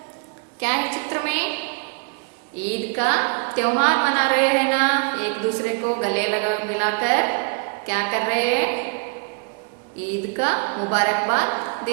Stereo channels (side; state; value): left; quieter; 36.6 dB